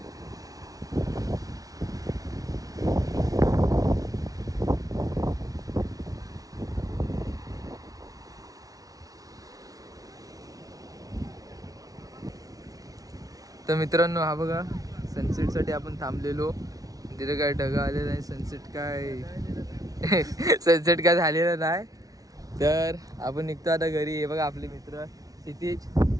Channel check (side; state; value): left; late; 0.18 ms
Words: तर मित्रांनो हा बघा सनसेटसाठी आपण थांबलेलो. तिथे काय ढगा आलेला नाही. सनसेट काय सनसेट काय झालेलं नाही. तर आपण निघतो आता घरी. हे बघा आपले मित्र क्षितिज